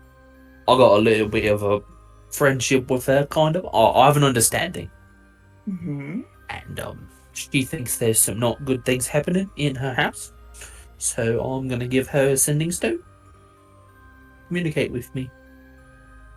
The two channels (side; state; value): both; identical; correlation 1.00